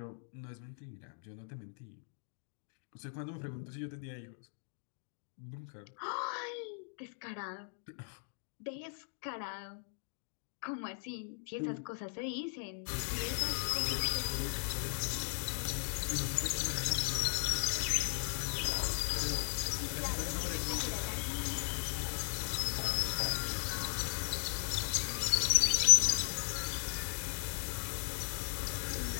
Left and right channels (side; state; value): right; silent; digital silence